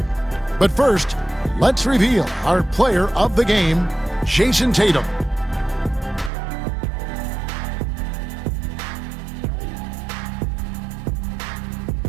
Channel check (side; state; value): left; drops out; at 6.3 s